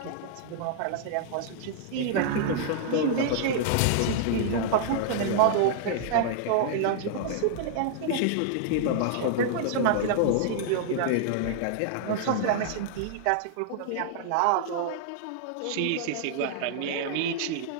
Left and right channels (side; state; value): both; different; correlation -0.01